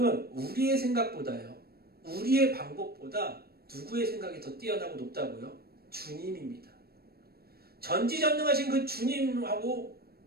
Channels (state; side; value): late; left; 0.45 ms